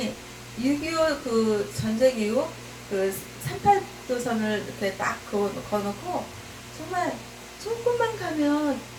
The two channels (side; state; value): both; identical; correlation 1.00